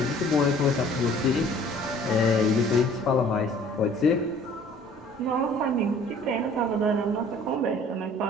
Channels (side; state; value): both; normal; correlation 0.52